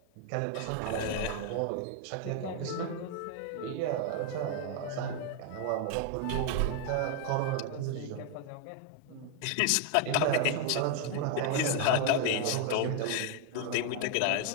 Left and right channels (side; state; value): both; different; correlation 0.00